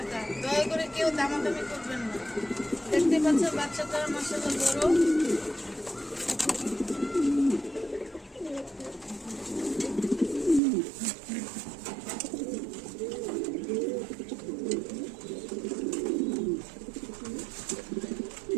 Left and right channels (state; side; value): drops out; left; at 10.6 s